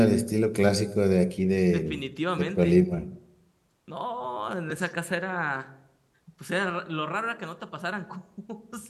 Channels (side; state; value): both; identical; correlation 1.00